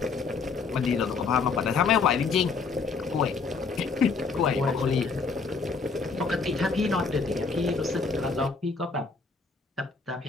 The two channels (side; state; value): right; quieter; 4.7 dB